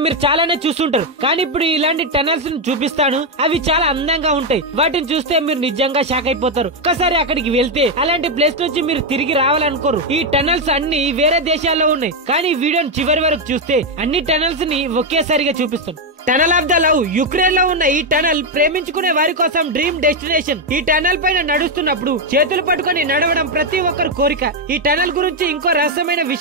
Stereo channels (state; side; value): normal; both; correlation 0.04